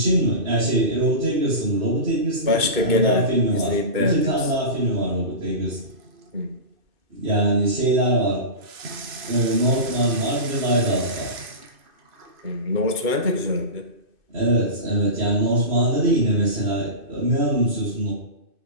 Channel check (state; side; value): late; left; 2.6 ms